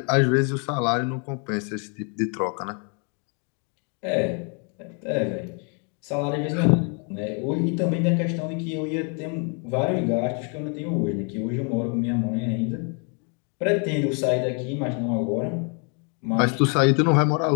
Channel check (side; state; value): right; quieter; 38.2 dB